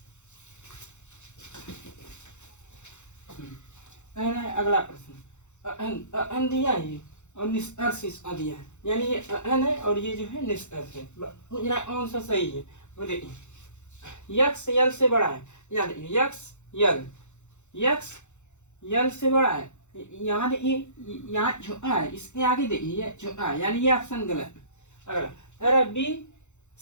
अगला प्रश्न अन दिया है और निष्कर्ष इसका दिया है, यानी ये अन है और ये जो है निष्कर्ष है, मुझे कौन सा सही है वो देखिए। यक्स यल से बड़ा है, याद यक्स यक्स यल से बड़ा है, यहाँ देखिए यहाँ छोटा है, इसके आगे देखिए ये छोटा है, यानी ये ऑप्शन गलत है। अगला बी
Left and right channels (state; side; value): late; right; 0.83 ms